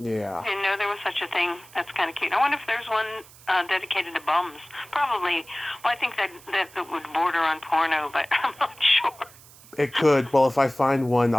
Didn't know there was such a thing. That's kind of cute. I wonder if there's one dedicated to bums. Probably. Well, I think that would border on porno, but I'm not sure. It could. Well, if I find one,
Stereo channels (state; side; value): noise; right; hiss, 22 dB below the sound